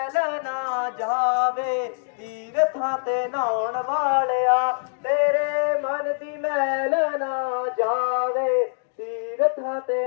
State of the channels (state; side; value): silent; right; digital silence